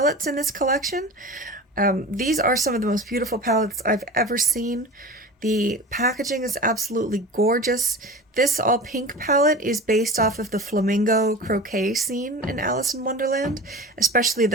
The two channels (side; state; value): both; normal; correlation 0.33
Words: in this collection. These are some of the most beautiful palettes I've ever seen. The packaging is absolutely gorgeous. This all pink palette is based off of the flamingo croquet scene in Alice in Wonderland, especially